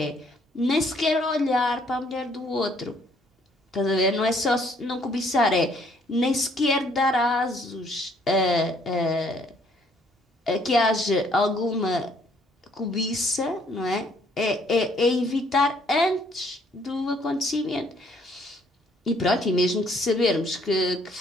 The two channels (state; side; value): normal; both; correlation 0.64